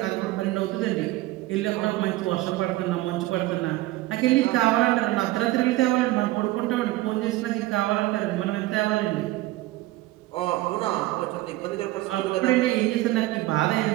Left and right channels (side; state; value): left; quieter; 17.8 dB